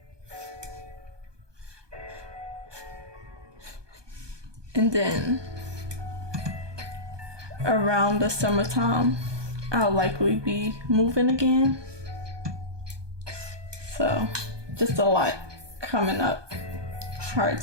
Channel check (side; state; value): left; late; 1.2 ms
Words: And then around the summertime, I'll likely be moving again. So just a lot coming up. Hard